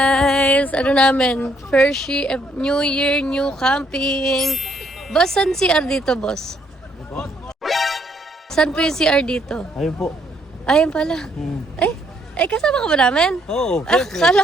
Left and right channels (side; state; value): both; normal; correlation 0.70